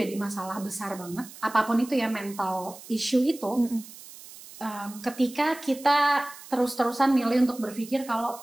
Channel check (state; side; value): noise; right; hiss, 17 dB below the sound